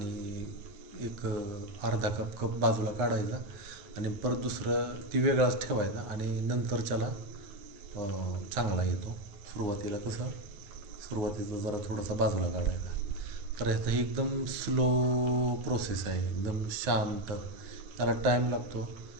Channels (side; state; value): left; late; 9.7 ms